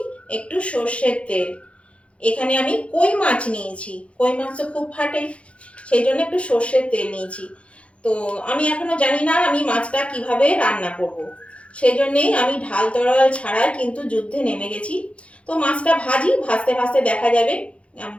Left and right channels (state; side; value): late; right; 0.061 ms